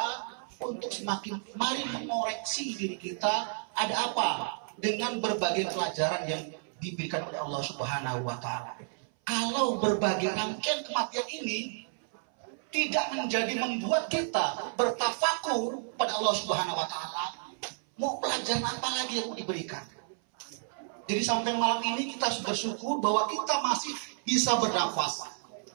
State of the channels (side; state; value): left; silent; 57 dB below the other